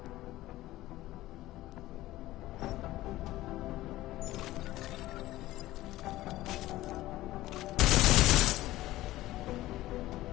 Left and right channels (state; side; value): quieter; right; 16.3 dB